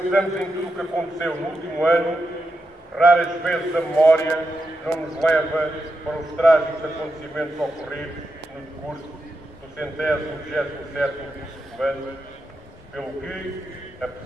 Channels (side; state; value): both; normal; correlation 0.87